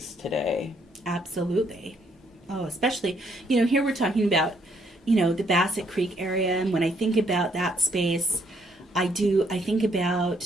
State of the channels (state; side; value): normal; both; correlation 0.70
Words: today. Absolutely. Oh, especially, here we're talking about, the Bassett Creek area, and when I think about that space, I think